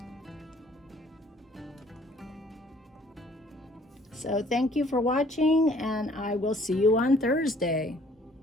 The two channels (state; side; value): normal; both; correlation 0.59